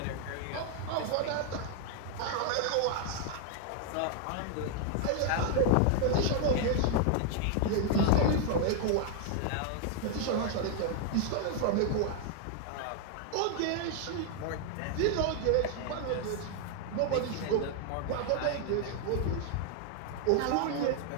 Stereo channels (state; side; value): different; both; correlation 0.00